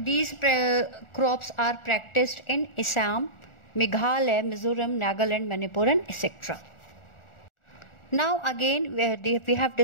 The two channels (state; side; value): late; right; 1.4 ms